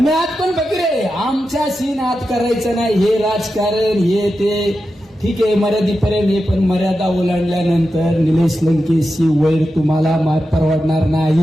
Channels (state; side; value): normal; both; correlation 0.90